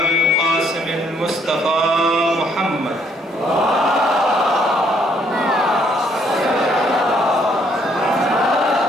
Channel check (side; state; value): both; normal; correlation 0.68